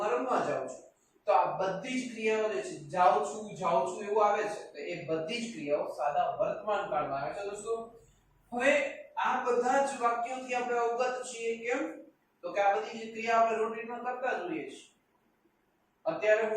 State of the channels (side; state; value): both; identical; correlation 1.00